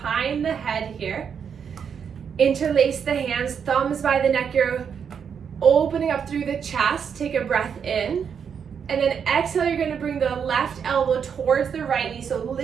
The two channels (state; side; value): quieter; left; 7.2 dB